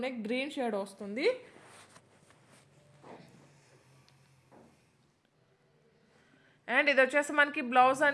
గ్రీన్ షేడ్ వస్తుంది. అండ్ ఇది వచ్చేసి మనకి బ్లౌజ్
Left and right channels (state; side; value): identical; both; correlation 1.00